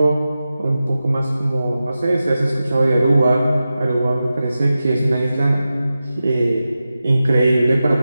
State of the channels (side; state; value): both; inverted; correlation -0.93